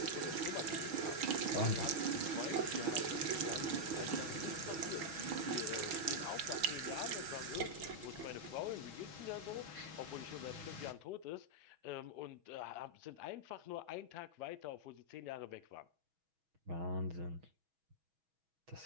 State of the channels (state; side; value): late; left; 6.2 ms